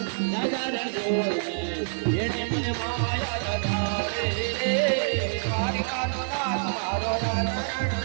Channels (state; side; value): silent; left; 60 dB below the other